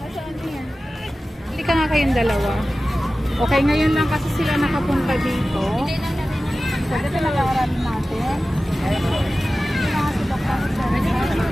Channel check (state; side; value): normal; both; correlation 0.95